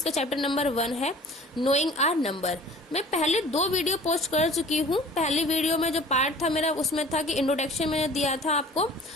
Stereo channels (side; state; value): both; normal; correlation 0.46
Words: चैप्टर नंबर 1 है नोइंग आर नंबर। मैं पहले 2 वीडियो पोस्ट कर चुकी हूँ। पहले वीडियो में जो पार्ट था मेरा, उसमें था कि इंट्रोडक्शन मैंने दिया था आपको,